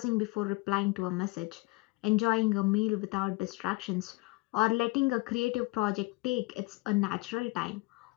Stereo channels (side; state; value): right; quieter; 23.7 dB